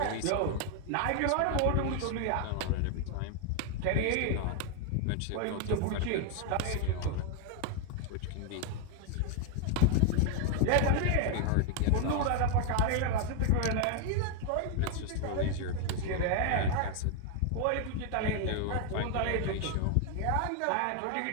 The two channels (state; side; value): different; both; correlation 0.00